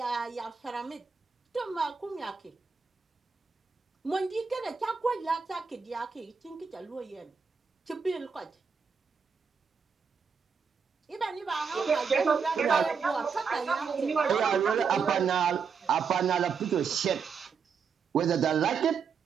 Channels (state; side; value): quieter; left; 5.9 dB